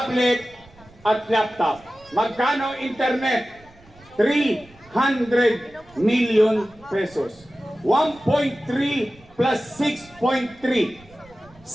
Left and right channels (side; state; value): right; noise; rumble, 26 dB below the sound